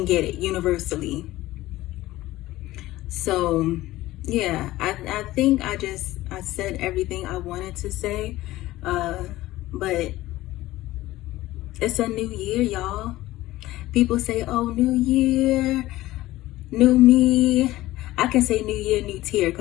get it universally. So yeah, I think I said everything I wanted to say, but it's a new year, y'all. People say, oh, new year, new me. I can say new year, new tear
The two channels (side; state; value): right; quieter; 16.7 dB